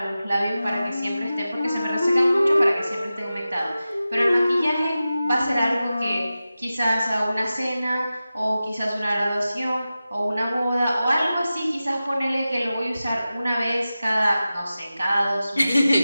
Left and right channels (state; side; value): inverted; both; correlation -0.94